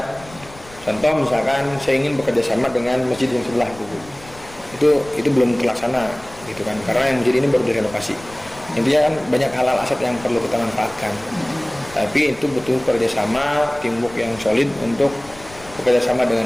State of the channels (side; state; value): left; noise; rumble, 21 dB below the sound